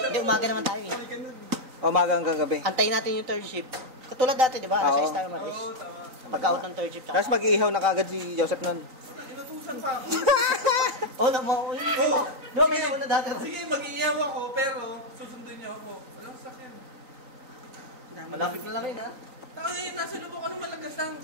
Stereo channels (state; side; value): late; left; 3.9 ms